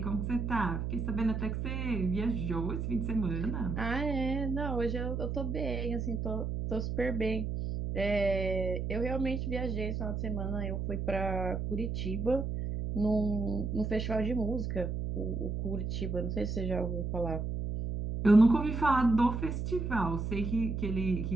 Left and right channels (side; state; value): right; noise; hum, 2 dB below the sound